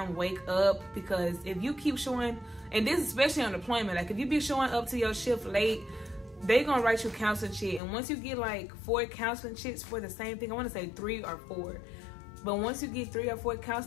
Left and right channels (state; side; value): drops out; right; at 7.8 s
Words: wake up, because if you keep showing, and this especially on deployment, like if you be showing up to your shift late, they gonna write you counseling shit. And once you get like 4 counseling shits for the same thing, I wanna say 3 or 4, but once you get 3 or 4